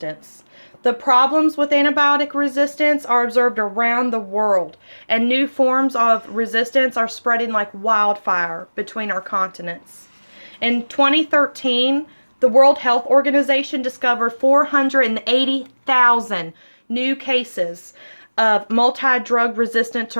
The problems with antibiotic resistance are observed around the world, and new forms of resistance are spreading like wildfire between our continents. In 2013, the World Health Organization discovered 480,000 new cases of multi-drug resistant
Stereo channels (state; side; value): inverted; both; correlation -1.00